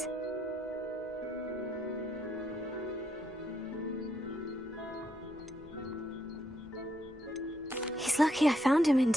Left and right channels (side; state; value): right; noise; hum, 29 dB below the sound